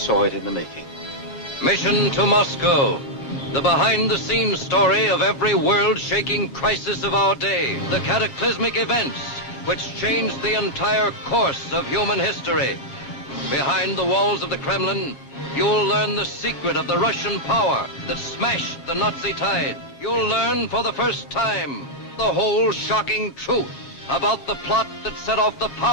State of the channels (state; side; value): late; right; 7.3 ms